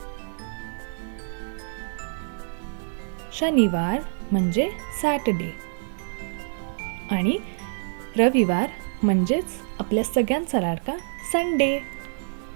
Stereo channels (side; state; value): left; silent; 61 dB below the other